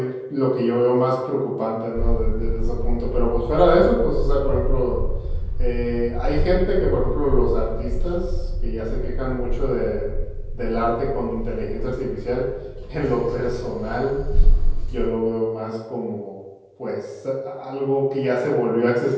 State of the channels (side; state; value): both; identical; correlation 1.00